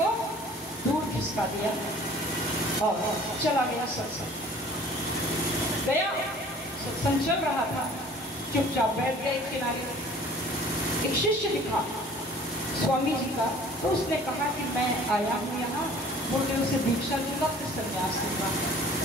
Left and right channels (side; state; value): both; normal; correlation 0.50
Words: दूर खिसका दिया और चला गया सत्संग। गया, सत्संग चल रहा था, चुपचाप बैठ गया एक किनारे। एक शिष्य दिखा स्वामी जी का, तो उसने कहा कि मैं आया हूँ यहाँ, बोले उसे दीक्षा दूंगा, फिर संन्यास दूंगा।